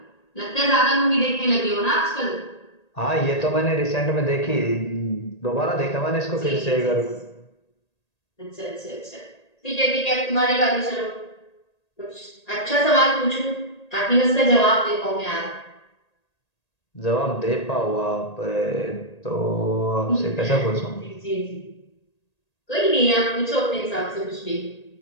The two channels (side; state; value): right; late; 1.8 ms